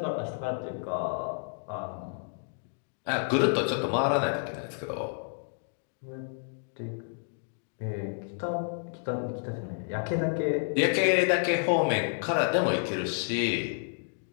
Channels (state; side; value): silent; right; digital silence